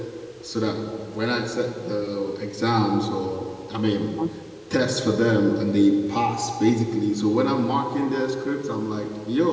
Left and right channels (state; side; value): identical; both; correlation 1.00